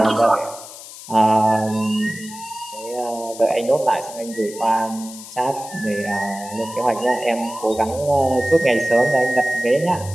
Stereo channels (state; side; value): noise; left; hiss, 15 dB below the sound